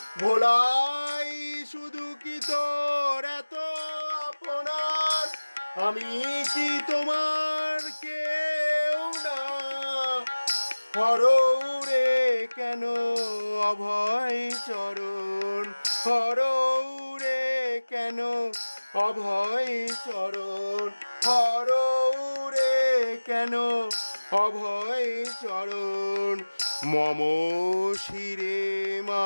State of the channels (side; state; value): both; inverted; correlation -1.00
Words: ভোলাই শুধু কি তোর এত আপনার, আমি কি তোমার কেউ না। হরৌরে কেন অভয় চরণ, হরৌরে কেন অভয় চরণ, হরৌরে কেন অভয় চরণ মম শিরে